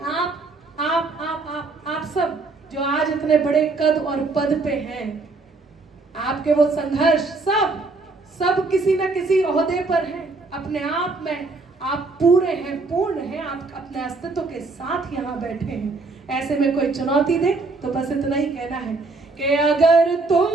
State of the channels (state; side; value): quieter; left; 3.6 dB